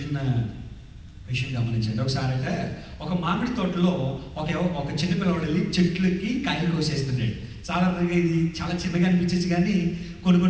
విషయం గమనించండి. ఒకసారి అయితే ఒక మామిడి తోటలో ఒక చిన్న పిల్లవాడు వెళ్ళి చెట్లకి కాయలు కోసేస్తున్నాడు. సాధారణంగా ఇది చాలా చిన్నగా అనిపించచ్చు, కానీ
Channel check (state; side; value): identical; both; correlation 1.00